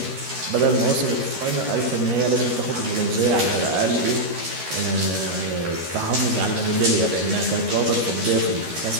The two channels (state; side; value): late; left; 13 ms